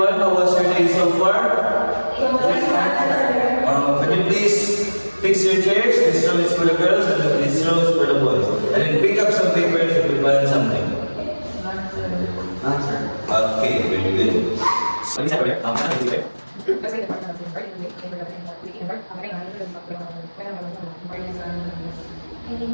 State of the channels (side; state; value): both; inverted; correlation -1.00